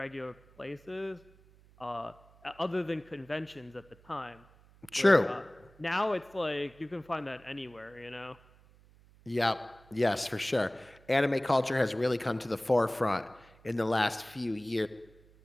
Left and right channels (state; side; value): noise; right; hum, 27 dB below the sound